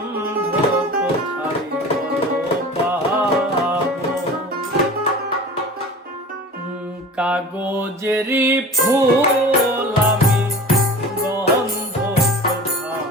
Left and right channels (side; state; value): both; normal; correlation 0.39